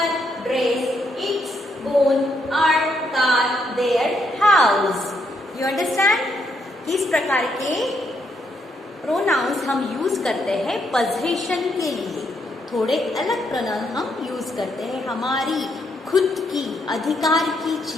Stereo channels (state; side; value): normal; both; correlation 0.76